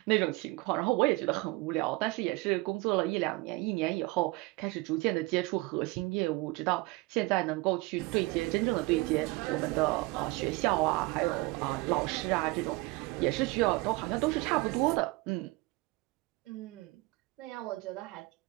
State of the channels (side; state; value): left; quieter; 22.6 dB